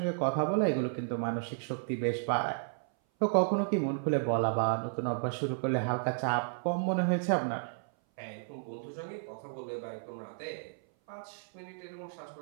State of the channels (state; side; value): silent; left; 56 dB below the other